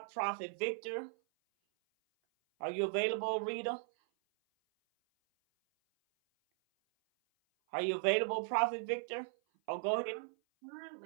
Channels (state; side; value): silent; left; 53 dB below the other